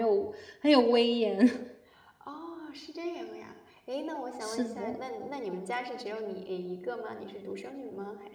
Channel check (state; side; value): identical; both; correlation 1.00